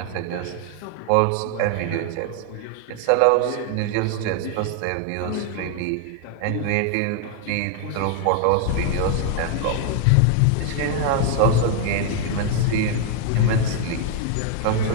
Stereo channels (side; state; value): both; different; correlation 0.00